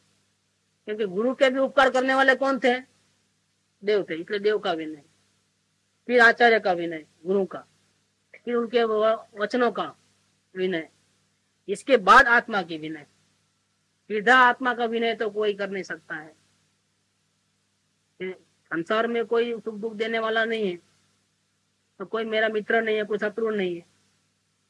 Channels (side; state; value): both; identical; correlation 1.00